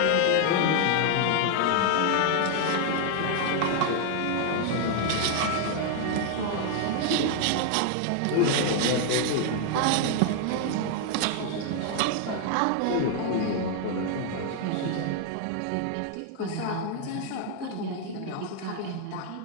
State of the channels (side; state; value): both; different; correlation 0.00